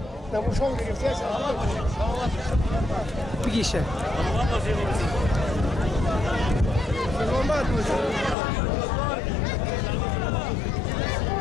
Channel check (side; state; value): right; drops out; at 8.3 s